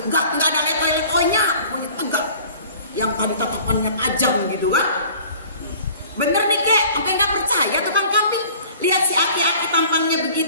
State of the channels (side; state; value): both; inverted; correlation -0.48